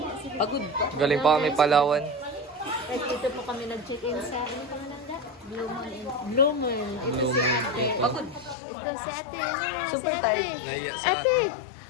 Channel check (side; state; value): right; drops out; at 8.6 s